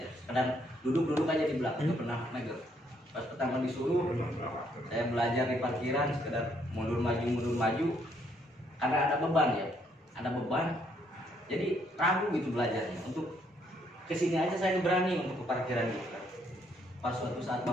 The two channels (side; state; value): both; normal; correlation 0.70